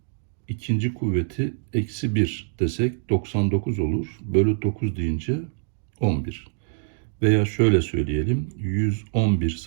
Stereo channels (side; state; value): left; silent; digital silence